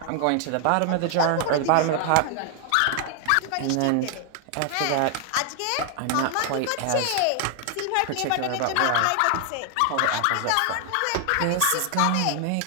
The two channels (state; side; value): different; both; correlation 0.00